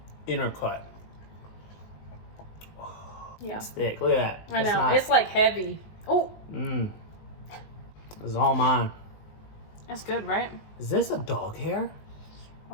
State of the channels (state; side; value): late; right; 19 ms